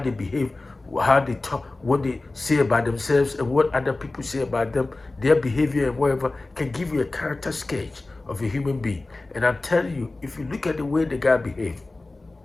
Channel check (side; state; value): right; quieter; 3.1 dB